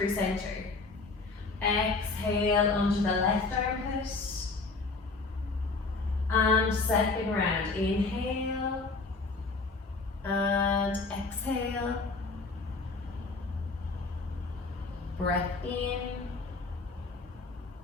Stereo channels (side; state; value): right; quieter; 3.8 dB